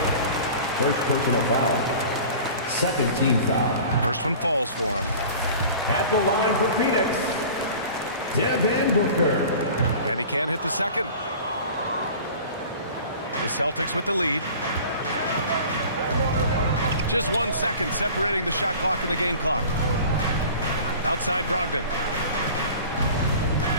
First personal foul. Second team foul. First one falls for him. At the line for Phoenix, Devin Booker. And he can't hit the second. The Celtics with the lead. Just 1 second separating the shot clock and the game clock. Outside Brogdon.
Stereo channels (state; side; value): inverted; both; correlation -0.41